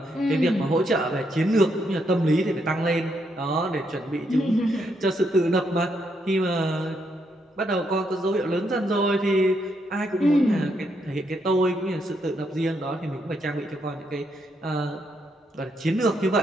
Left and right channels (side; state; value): both; normal; correlation 0.77